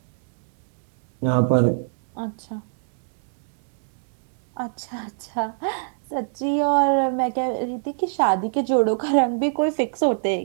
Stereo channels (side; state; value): left; silent; digital silence